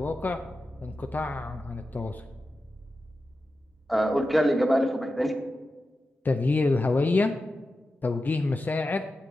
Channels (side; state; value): both; normal; correlation 0.92